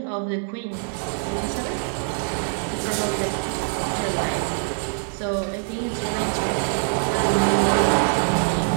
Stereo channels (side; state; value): left; silent; digital silence